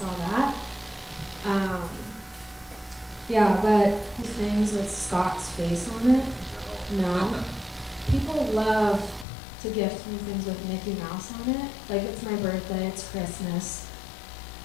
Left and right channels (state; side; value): drops out; right; at 9.2 s